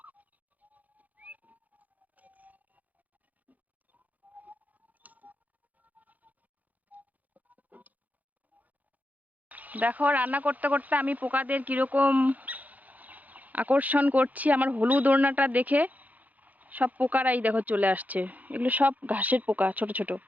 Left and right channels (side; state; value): left; late; 0.079 ms